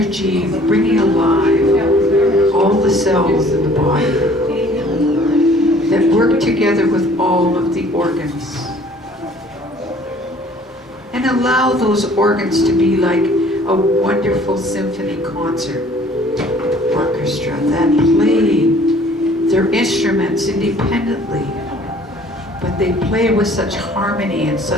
bringing alive all the cells in the body that work together with all of the organs. And allow those organs to be like a wonderful symphony concert orchestra that play their instruments independently, but they play with such harmony and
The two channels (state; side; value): normal; both; correlation 0.54